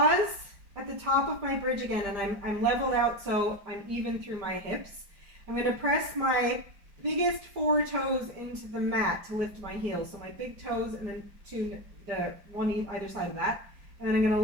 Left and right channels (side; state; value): left; late; 5.0 ms